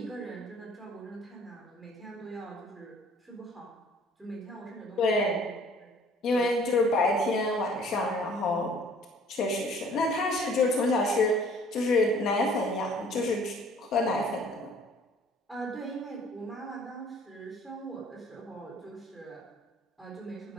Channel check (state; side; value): normal; both; correlation 0.54